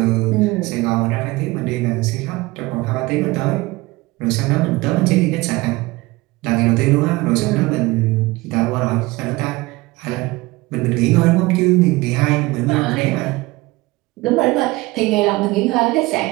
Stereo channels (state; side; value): quieter; left; 21.2 dB